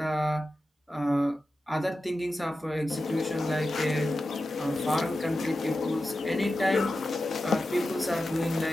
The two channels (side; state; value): both; normal; correlation 0.92